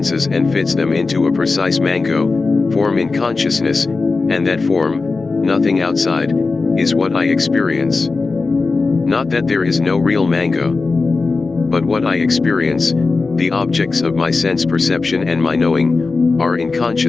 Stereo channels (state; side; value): quieter; right; 4.0 dB